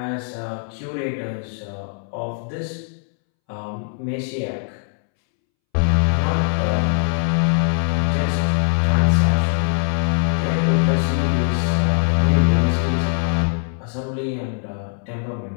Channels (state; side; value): silent; right; 65 dB below the other